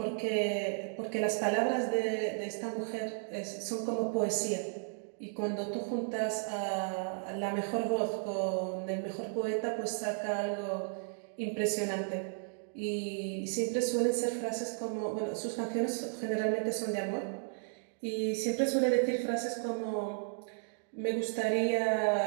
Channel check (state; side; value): silent; left; digital silence